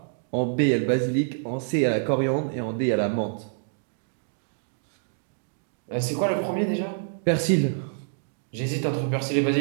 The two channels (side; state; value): left; silent; digital silence